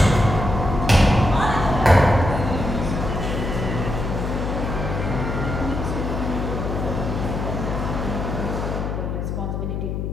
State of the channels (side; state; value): left; noise; hum, 3 dB below the sound